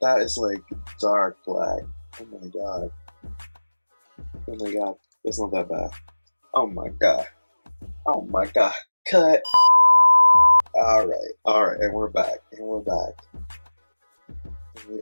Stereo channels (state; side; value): inverted; both; correlation -1.00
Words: That is like dark black. Oh my god. It's not that bad. Oh my god. Cut. Alright, and we're back. We are